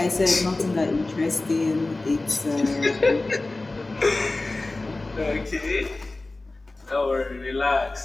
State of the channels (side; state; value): right; quieter; 3.1 dB